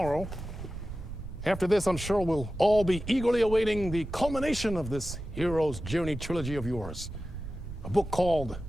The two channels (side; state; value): right; noise; rumble, 10 dB below the sound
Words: After this, I'm sure we'll all be eagerly awaiting the culmination of this hero's journey trilogy of yours. A book called